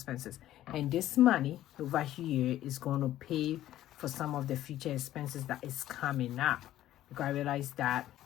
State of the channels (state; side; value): quieter; right; 13.4 dB